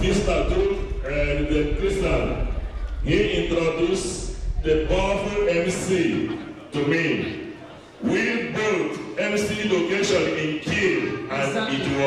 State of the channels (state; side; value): identical; both; correlation 1.00